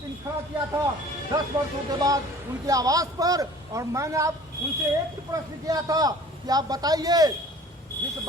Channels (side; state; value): both; normal; correlation 0.48